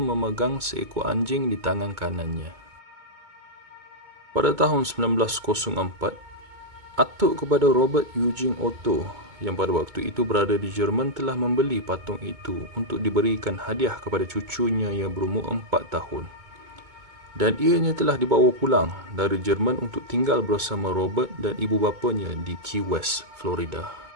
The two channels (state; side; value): late; left; 2.2 ms